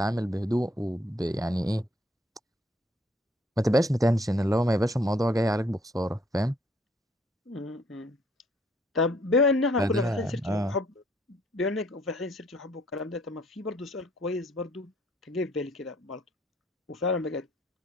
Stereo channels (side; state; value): both; normal; correlation 0.65